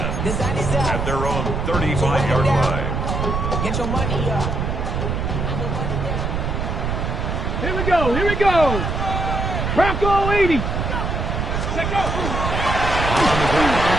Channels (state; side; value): noise; right; rumble, 1 dB below the sound